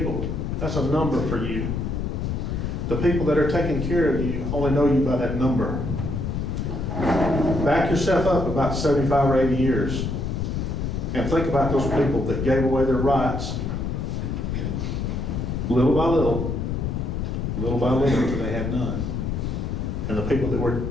That's a number for you. The people that are taking care of you only know you by that number. Back yourself up about 75 or 80 years and think about those people that gave away their rights little by little until they had none. And the people that were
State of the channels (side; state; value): left; noise; rumble, 2 dB below the sound